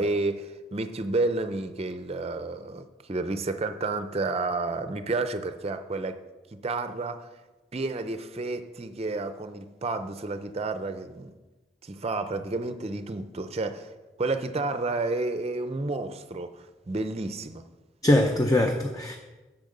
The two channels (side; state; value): both; normal; correlation 0.54